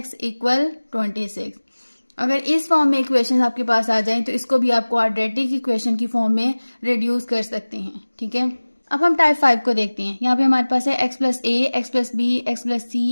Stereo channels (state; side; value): inverted; both; correlation -1.00